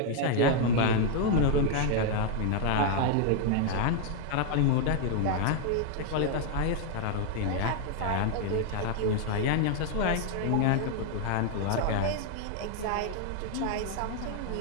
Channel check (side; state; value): both; different; correlation 0.00